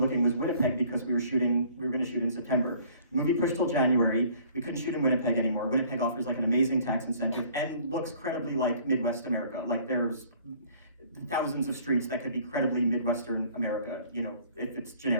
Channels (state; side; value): inverted; both; correlation -0.55